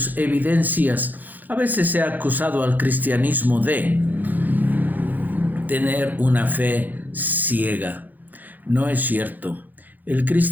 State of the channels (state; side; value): late; left; 0.084 ms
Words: evidencias, a veces se ha acusado al cristianismo de tener una fe ciega. No es cierto. El